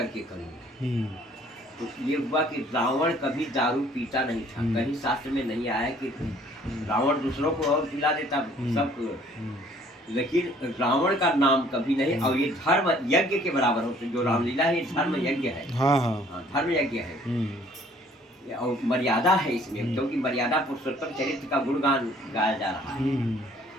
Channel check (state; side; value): normal; both; correlation 0.58